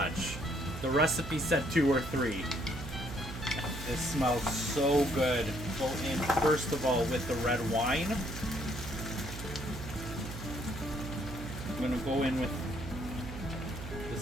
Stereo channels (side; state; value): right; noise; hum, 9 dB below the sound